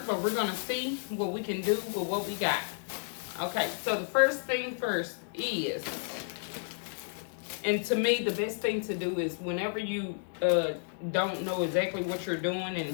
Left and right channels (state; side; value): silent; right; digital silence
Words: but we're going to see what we can do with what we got. Okay, so the first thing first is, and to me the best thing to do is whenever you don't know exactly what you're doing